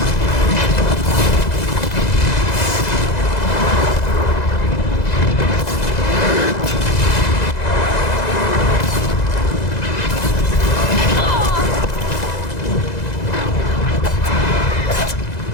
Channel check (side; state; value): right; late; 2.0 ms